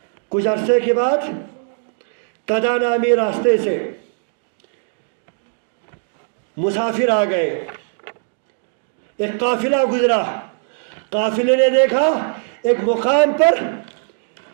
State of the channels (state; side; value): silent; left; digital silence